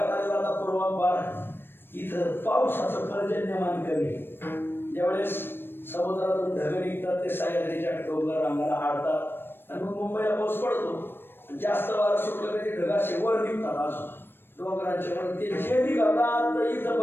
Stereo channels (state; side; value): late; right; 0.10 ms